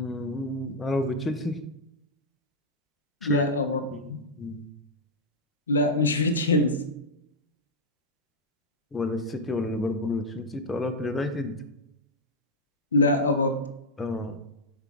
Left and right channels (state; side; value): normal; both; correlation -0.04